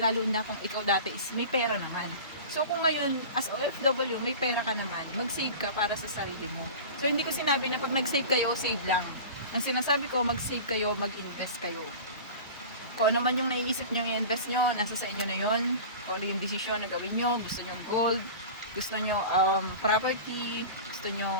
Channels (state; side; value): inverted; both; correlation -0.35